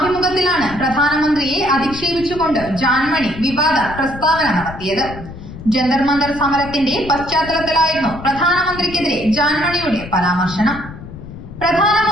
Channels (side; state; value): left; noise; rumble, 13 dB below the sound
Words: പ്രധാനമന്ത്രിയെ അധിക്ഷേപിച്ചുകൊണ്ട് ജാൻമണി വിവാദ പ്രസ്താവന നടത്തിയത്. ജന്തർ മന്ദർ സമരത്തിന്റെ പശ്ചാത്തലത്തിലായിരുന്നു പ്രധാനമന്ത്രിക്കെതിരെ ജാൻമണിയുടെ പരാമർശനം.